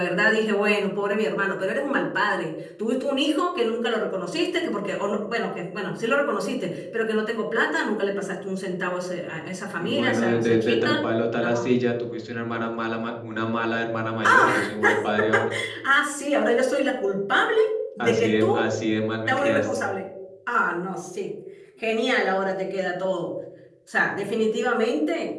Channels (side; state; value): both; identical; correlation 1.00